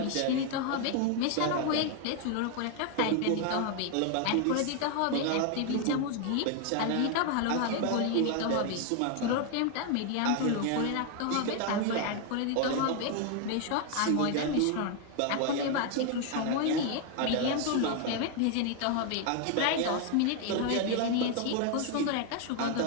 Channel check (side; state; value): both; different; correlation 0.01